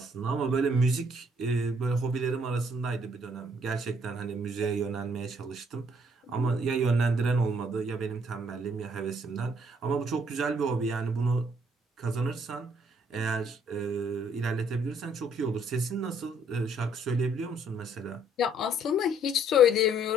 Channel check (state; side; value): normal; both; correlation 0.65